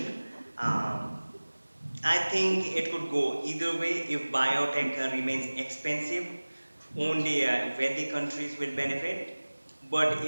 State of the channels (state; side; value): inverted; both; correlation -1.00